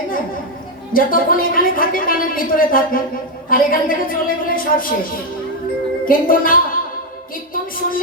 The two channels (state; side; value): normal; both; correlation 0.04